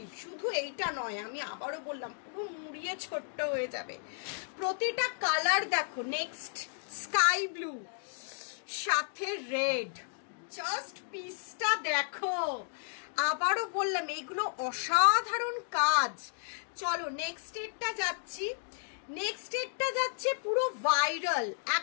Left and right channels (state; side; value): silent; right; digital silence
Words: শুধু এইটা নয়, আমি আবারও বললাম, পুরো মুড়িয়ে ছোট্ট হয়ে যাবে। প্রতিটা কালার দেখো, নেক্সট স্কাই ব্লু সাথে রেড, জাস্ট পিসটা দেখো। আবারও বললাম এইগুলো অসাধারণ কাজ। চলো নেক্সট এরটা যাচ্ছি। নেক্সট এরটা যাচ্ছে পুরো ভাইরাল,